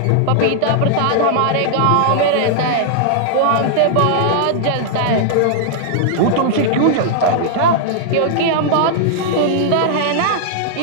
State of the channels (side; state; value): both; different; correlation -0.01